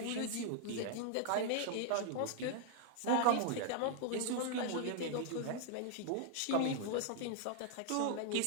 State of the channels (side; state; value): both; different; correlation 0.00